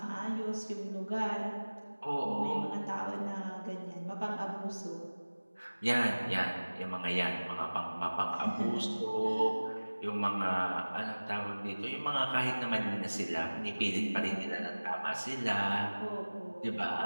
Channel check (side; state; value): both; inverted; correlation -1.00